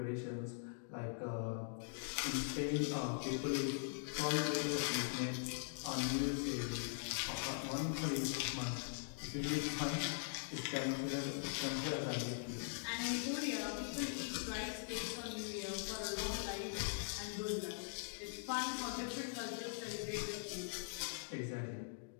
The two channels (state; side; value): silent; right; digital silence